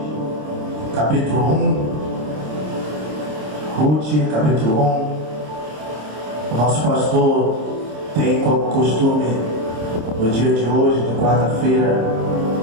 capítulo 1. Ruth, capítulo 1. O nosso pastor tem como costume, no dia de hoje, de quarta-feira,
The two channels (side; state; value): left; late; 26 ms